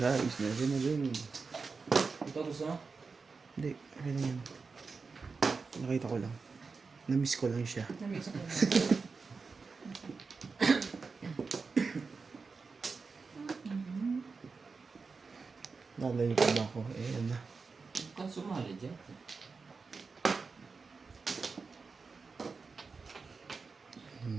Never na rin. Ito gusto mo? Hindi, okay lang yan. Nakita ko lang. Na-miss ko lang siya. Namiss ko na. Lalayo pa ba ako? Eh, yan na. Kan sumali dyan.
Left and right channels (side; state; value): left; quieter; 4.6 dB